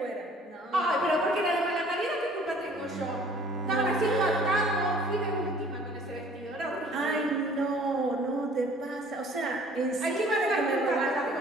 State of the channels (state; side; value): normal; both; correlation 0.53